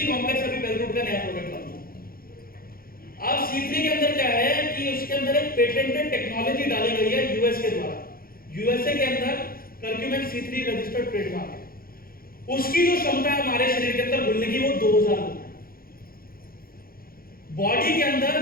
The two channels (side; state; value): right; late; 0.43 ms